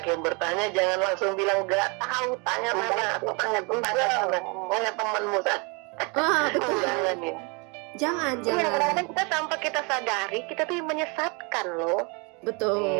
yang bertanya, jangan langsung bilang nggak tahu, tanya mana atau tanya temanmu. Betul. Jangan ya. Jangan. Kadang-kadang kita tanpa kita sadari, kita tuh menyesatkan loh. Betul.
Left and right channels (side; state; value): left; quieter; 31.6 dB